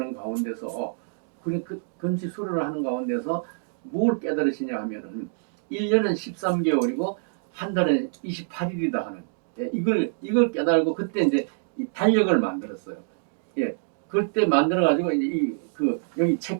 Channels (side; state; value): left; silent; digital silence